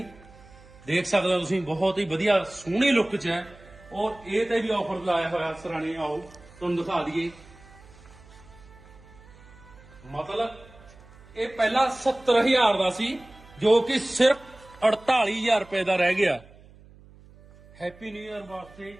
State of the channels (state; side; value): noise; right; hum, 23 dB below the sound